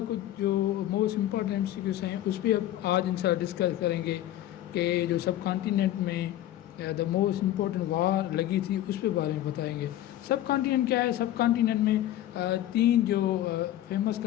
کچھ جو موسٹ امپورٹنٹ MCQs ہیں اس پہ اب آج ان شاء اللہ ڈسکس کریں گے کہ جو سب کانٹیننٹ میں دا موسٹ امپورٹنٹ وار لگی تھی اس پہ بارے میں بتائیں گے. سب کانٹیننٹ کیا ہے؟ سب کانٹیننٹ میں تین جو فیمس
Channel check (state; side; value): quieter; right; 13.3 dB